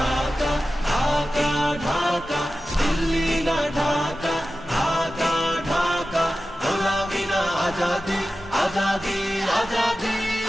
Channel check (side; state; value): both; normal; correlation 0.94